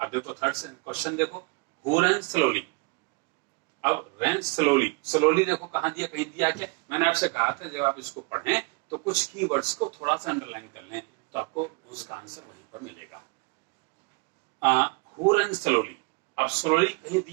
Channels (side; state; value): left; quieter; 30.4 dB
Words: देखो थर्ड क्वेश्चन देखो, हु रैन स्लोली। अब रैन स्लोली देखो कहां दिया, कहीं दिया क्या। मैंने आपसे कहा था जब आप इसको पढ़ें तो कुछ कीवर्ड्स को थोड़ा सा अंडरलाइन कर लें तो आपको उसका आंसर वहीं पर मिलेगा। हु रैन स्लोली, अब स्लोली कहीं